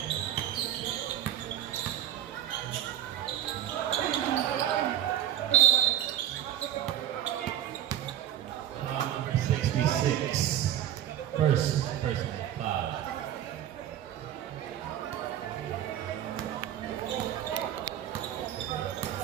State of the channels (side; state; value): left; quieter; 11.2 dB